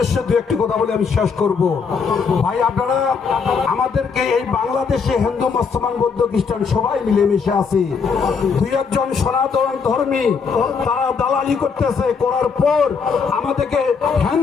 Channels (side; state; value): right; quieter; 5.6 dB